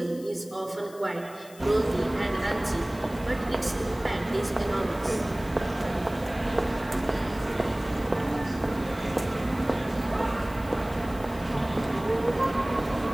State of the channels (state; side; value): noise; left; hiss, 21 dB below the sound